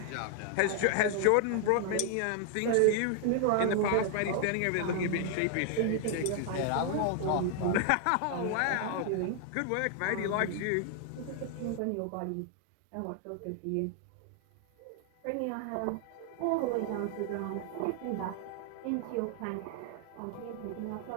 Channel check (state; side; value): different; both; correlation 0.00